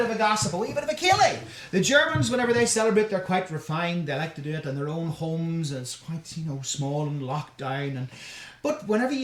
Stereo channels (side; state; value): both; identical; correlation 1.00